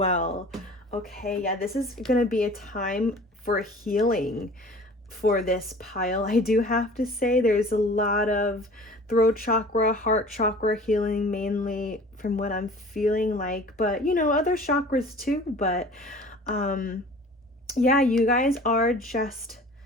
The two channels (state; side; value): normal; both; correlation 0.44